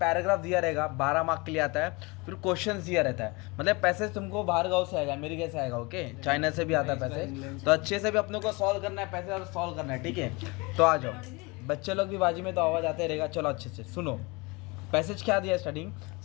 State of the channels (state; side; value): quieter; right; 26.5 dB